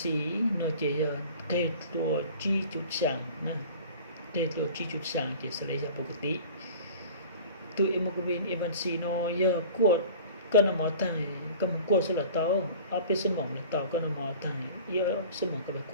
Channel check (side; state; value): both; inverted; correlation -0.43